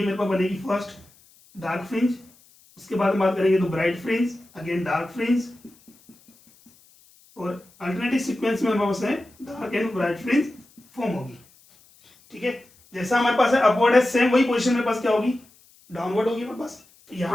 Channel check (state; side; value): noise; left; hiss, 29 dB below the sound